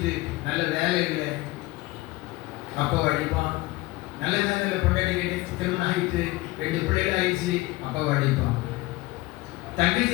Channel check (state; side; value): quieter; right; 20.4 dB